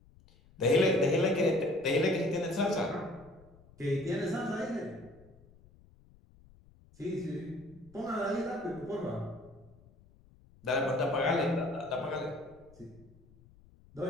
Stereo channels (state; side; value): noise; left; rumble, 26 dB below the sound